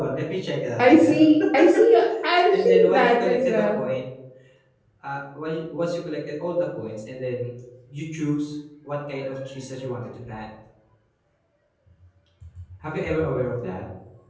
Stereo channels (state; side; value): identical; both; correlation 1.00